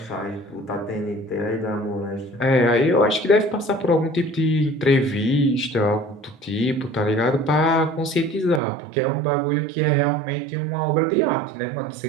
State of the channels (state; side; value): drops out; left; at 8.6 s